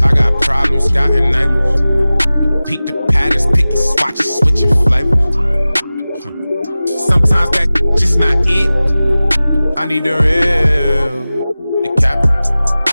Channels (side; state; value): both; inverted; correlation -0.97